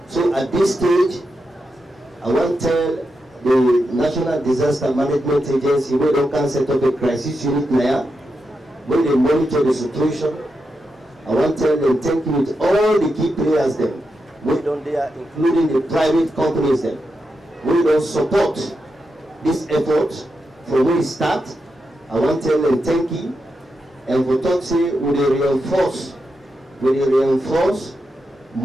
So at this stage, I want to tell the National Disaster Management Agency where they can set up a crisis unit there, where they monitor the situation. I want to tell them thank you with all the key players them, we don't there, including the private companies them, we don't support this effort from where it start. I want to tell them thank you, and for talk say we reinforce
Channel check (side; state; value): both; normal; correlation 0.87